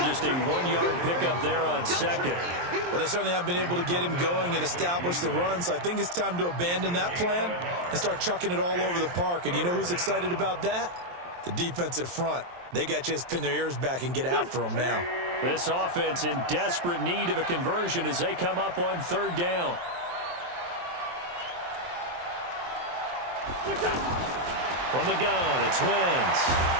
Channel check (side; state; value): left; late; 23 ms